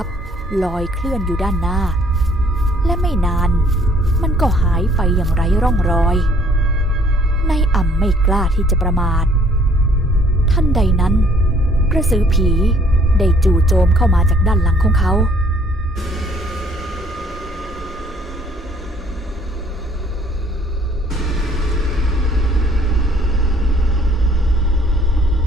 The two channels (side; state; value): both; normal; correlation 0.61